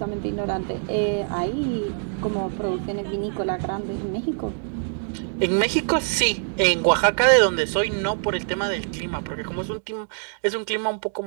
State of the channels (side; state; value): left; silent; digital silence